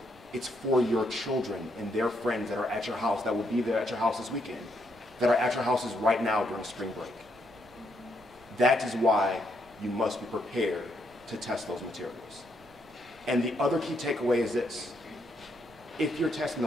It's for your children and their friends that are at your house, that will be there at your house this weekend, that are at your houses right now during spring break. That is why you must be prepared to test those materials. And the other key takeaway is this. If you're testing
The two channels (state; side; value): normal; both; correlation 0.76